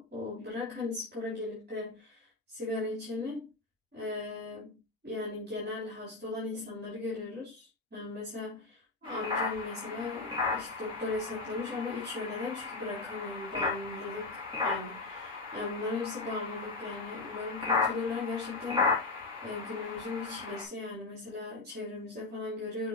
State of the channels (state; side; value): quieter; right; 3.4 dB